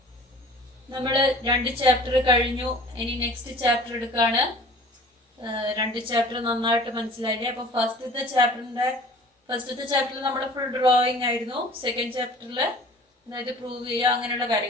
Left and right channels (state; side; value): normal; both; correlation 0.46